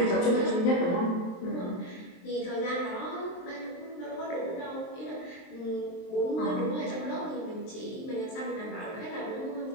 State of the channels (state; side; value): late; right; 23 ms